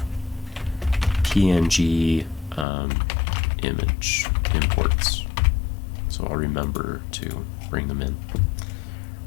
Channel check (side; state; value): right; drops out; at 2.7 s